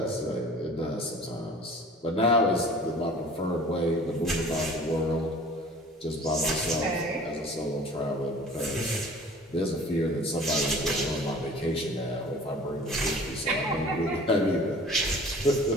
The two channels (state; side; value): normal; both; correlation 0.46